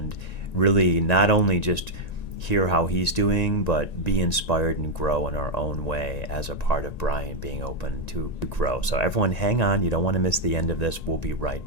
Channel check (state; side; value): late; right; 1.9 ms